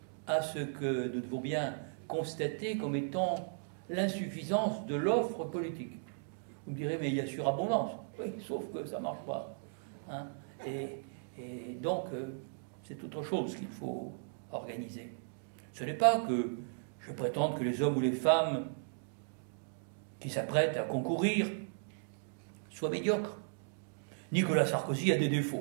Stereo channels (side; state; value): left; silent; digital silence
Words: à ce que nous devons bien constater comme étant l'insuffisance de l'offre politique. Vous me direz, mais il y a surabondance. Oui, sauf que ça ne marche pas. Hein. Et donc, c'est autre chose qu'il faut organiser. Ce n'est pas que je prétende que les hommes ou les femmes qui s'apprêtent à concourir soient médiocres. Nicolas Sarkozy a des